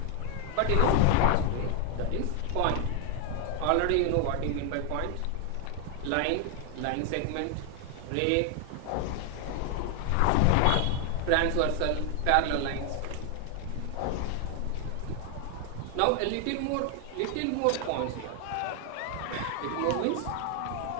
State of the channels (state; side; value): different; both; correlation 0.00